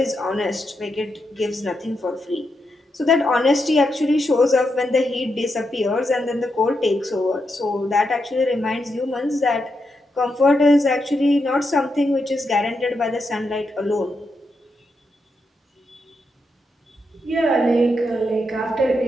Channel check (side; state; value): both; normal; correlation 0.84